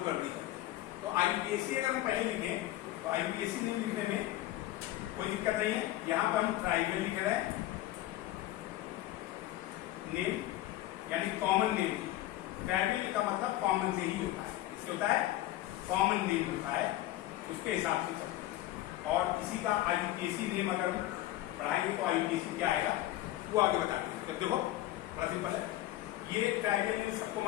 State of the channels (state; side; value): quieter; right; 15.2 dB